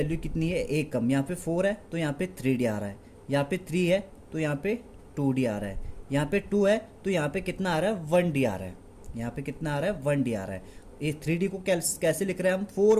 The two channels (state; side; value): identical; both; correlation 1.00